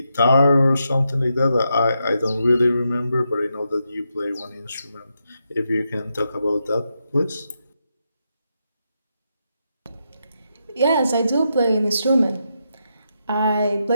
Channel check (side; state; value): both; inverted; correlation -0.84